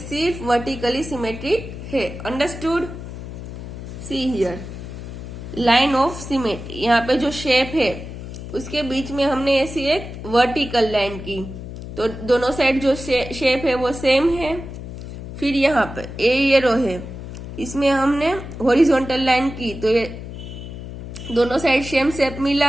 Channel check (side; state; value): left; noise; hum, 10 dB below the sound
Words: वर्टिकली सिमेट्रिक है। Understood? See here line of symmetry. यहाँ पे जो शेप है उसके बीच में हमने ऐसी एक वर्टिकल लाइन की, तो दोनों साइड जो शेप है वो सेम है। फिर यहाँ पे ये रो है, इसमें हमने हॉरिजॉन्टल लाइन की, तो ये दोनों साइड सेम शेप